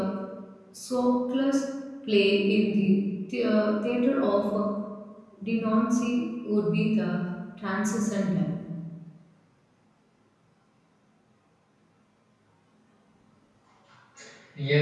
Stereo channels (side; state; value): both; identical; correlation 1.00